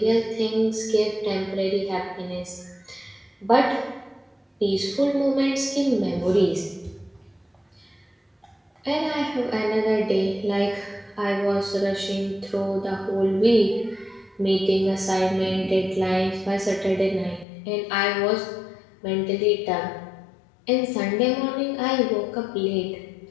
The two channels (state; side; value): drops out; right; at 17.4 s